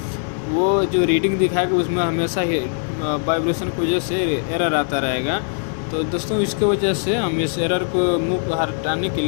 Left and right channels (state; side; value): silent; right; 60 dB below the other